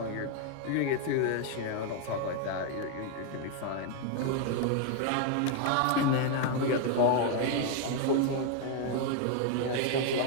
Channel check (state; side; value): different; both; correlation 0.00